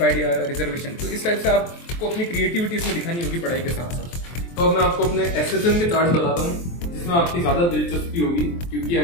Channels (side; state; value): right; late; 23 ms